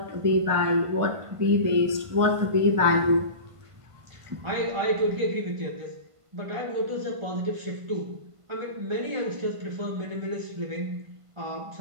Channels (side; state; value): left; late; 1.5 ms